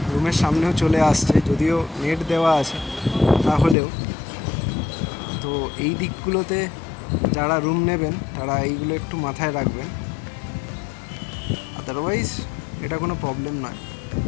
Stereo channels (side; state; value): right; drops out; at 3.8 s